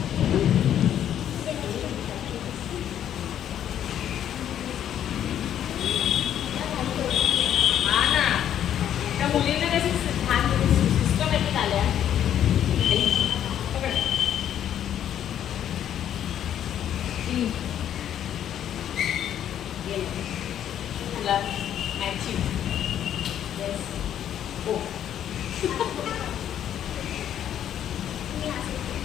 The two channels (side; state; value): right; quieter; 10.3 dB